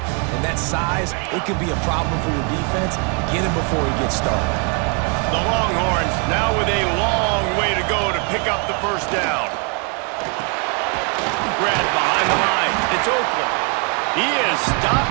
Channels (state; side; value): quieter; left; 37.2 dB